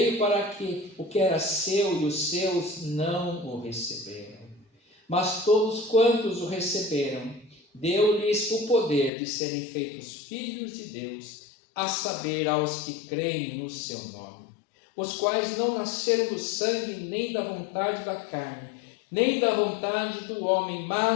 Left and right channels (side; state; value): right; drops out; at 9.1 s